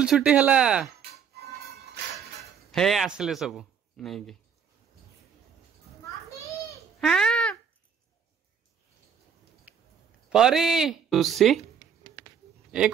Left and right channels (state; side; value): quieter; left; 7.4 dB